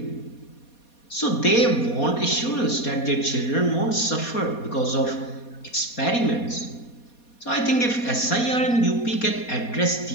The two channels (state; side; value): late; right; 4.2 ms